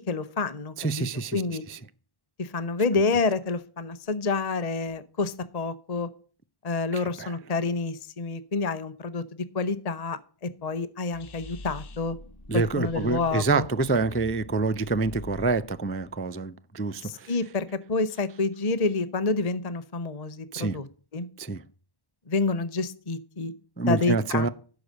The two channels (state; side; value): late; right; 1.1 ms